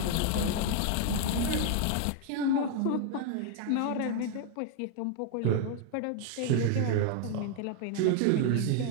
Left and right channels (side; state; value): both; different; correlation 0.00